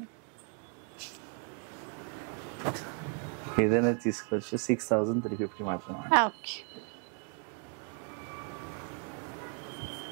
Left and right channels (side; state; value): left; quieter; 38.8 dB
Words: ఏదైనా తీసుకోవచ్చు, 6,350 మాత్రమే. ఓకే,